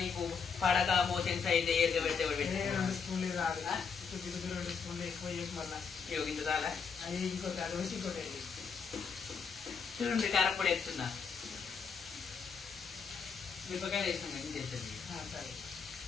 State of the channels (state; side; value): quieter; right; 5.9 dB